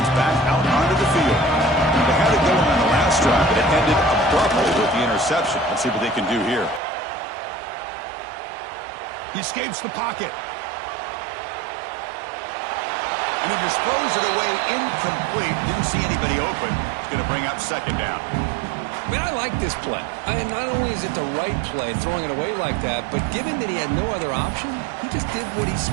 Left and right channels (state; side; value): drops out; left; at 6.8 s